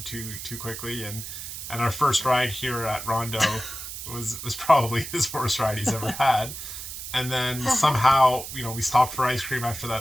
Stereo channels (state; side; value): noise; right; hiss, 9 dB below the sound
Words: too quickly. And our first ride here at Rondeau was probably his worst ride he's ever had. And then somehow, we stopped for ice cream after